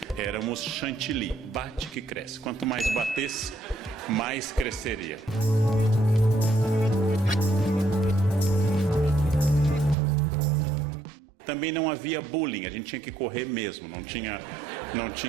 Éramos chantilly, bate que cresce. Quanto mais batesse, mais cresceria. Também não havia bullying, a gente tinha que correr mesmo, não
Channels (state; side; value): drops out; left; at 10.0 s